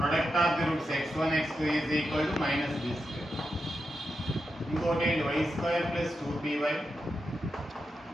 of the roots x1 x2 is equal to minus b square. ఇంకోటి ఏంటి? Y square plus 2py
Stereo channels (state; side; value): normal; both; correlation 0.87